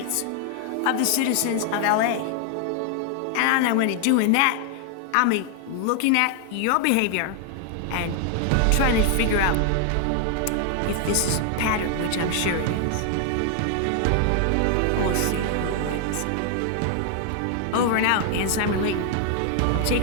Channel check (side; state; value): both; different; correlation 0.00